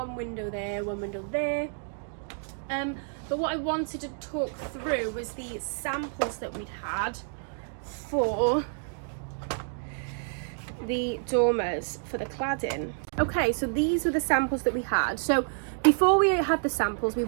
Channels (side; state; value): left; silent; digital silence